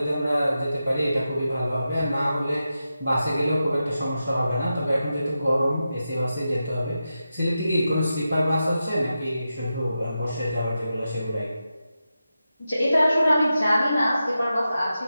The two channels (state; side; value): inverted; both; correlation -0.90